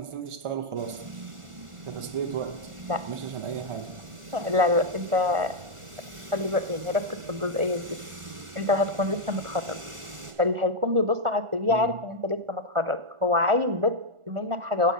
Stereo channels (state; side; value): late; left; 1.4 ms